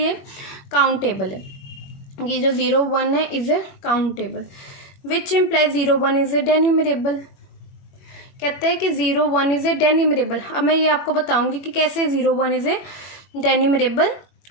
काउंटेबल है, कि जो 0 1 है is a countable, which implies 0 1 is a denumerable. कहते हैं कि 0 1 इज ए डेन्यूमरेबल। अब मैं ये आपको बताऊंगी कि कैसे 0 1 इज ए डेन्यूमरेबल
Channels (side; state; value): right; late; 21 ms